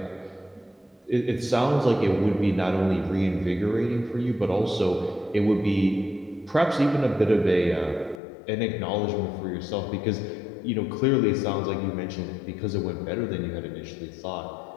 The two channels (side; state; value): right; drops out; at 8.2 s